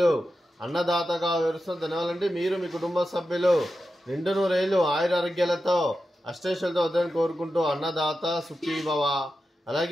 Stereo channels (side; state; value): both; normal; correlation 0.91